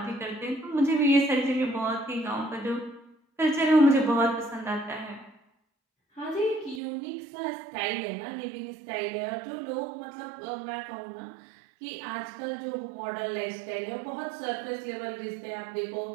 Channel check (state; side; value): drops out; left; at 6.8 s